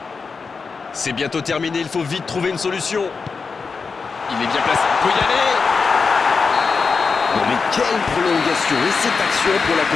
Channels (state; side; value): quieter; right; 4.9 dB